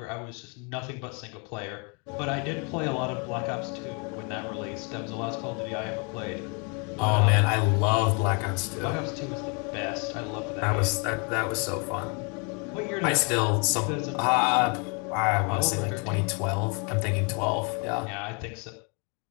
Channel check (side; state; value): right; quieter; 34.7 dB